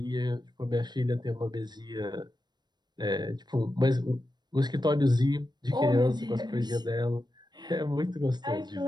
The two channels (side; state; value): left; late; 0.21 ms